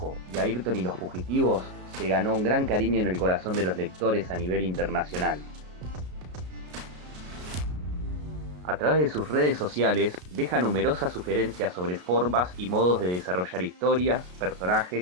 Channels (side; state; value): left; late; 33 ms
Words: y Ayrton y los fugitivos, se ganó un gran cariño en el corazón de los lectores a nivel internacional. A través de sus redes sociales, deja numerosas sugerencias sobre formas y modos de desarrollar historias,